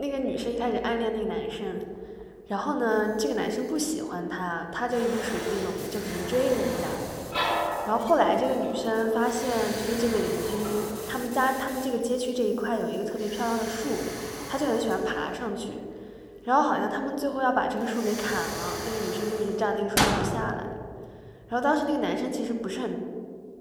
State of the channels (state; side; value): identical; both; correlation 1.00